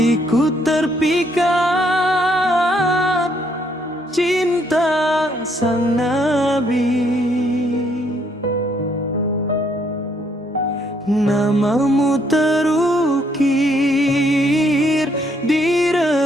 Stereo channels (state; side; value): normal; both; correlation 0.70